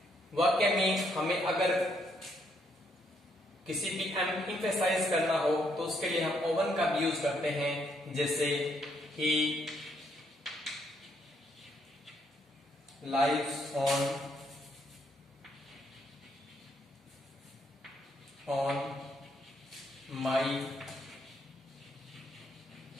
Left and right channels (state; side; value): normal; both; correlation 0.73